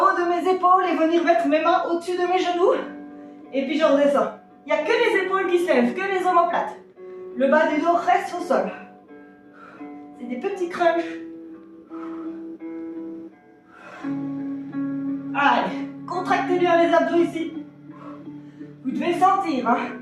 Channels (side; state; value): both; identical; correlation 1.00